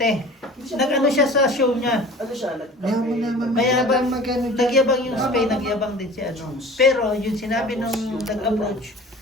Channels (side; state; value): both; normal; correlation 0.42